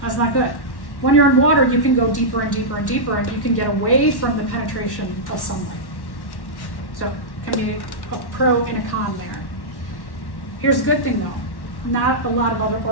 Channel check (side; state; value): right; late; 1.1 ms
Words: That's not good. When you're in water, you can go deeper and deeper and deeper, and you can get away from the penetration of sunlight. So can be a pro and a con there. Here's a good thing though, not a lot of other